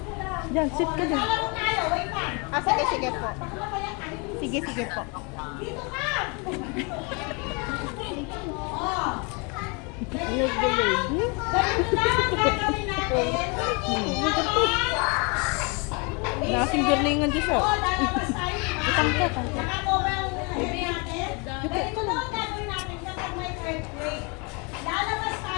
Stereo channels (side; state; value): right; quieter; 31.7 dB